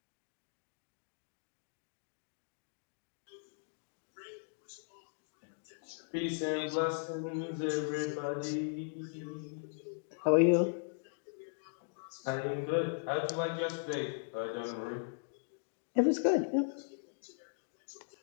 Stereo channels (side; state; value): right; silent; digital silence